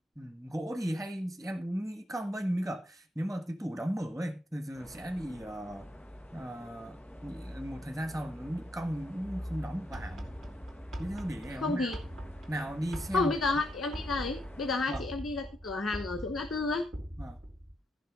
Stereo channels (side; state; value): both; normal; correlation 0.79